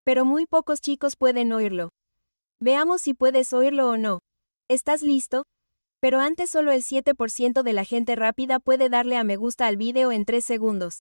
Pero muy pocos chicos pueden oírlo. Veamos si puedes oírlo o no. ¿Estás listo? Pero antes solo el 7% de la gente rápida puede darle a me gusta al video en 3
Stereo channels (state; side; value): inverted; both; correlation -1.00